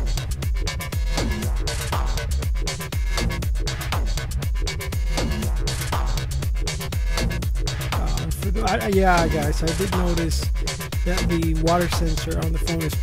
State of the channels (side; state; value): both; identical; correlation 1.00